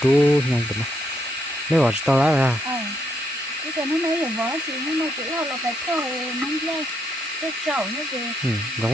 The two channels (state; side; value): normal; both; correlation 0.77